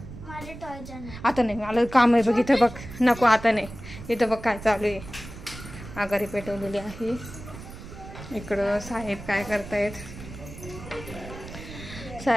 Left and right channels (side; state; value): right; noise; rumble, 13 dB below the sound